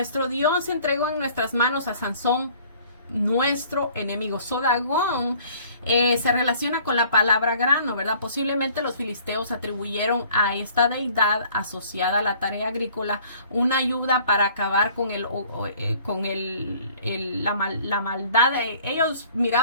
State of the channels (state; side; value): inverted; both; correlation -0.55